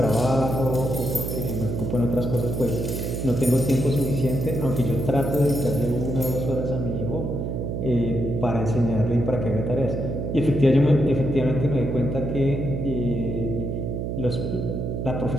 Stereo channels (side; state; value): right; noise; hum, 3 dB below the sound